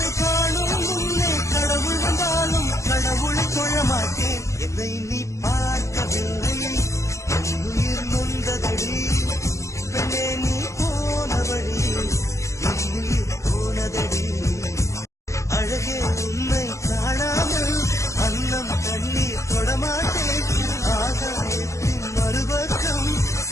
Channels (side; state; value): right; late; 0.15 ms